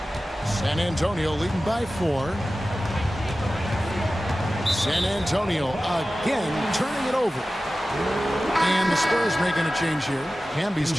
San Antonio leading by 4. San Antonio again turning it over. And the Spurs making a change here. Camby's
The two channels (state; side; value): normal; both; correlation 0.95